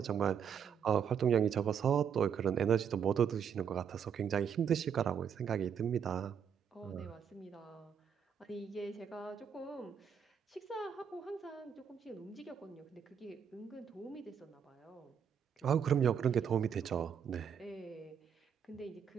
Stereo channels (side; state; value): left; quieter; 7.7 dB